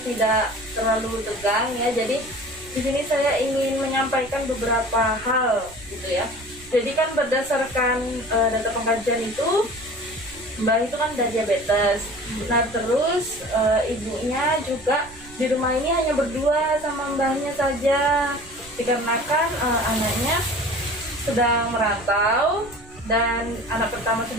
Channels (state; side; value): noise; right; rumble, 21 dB below the sound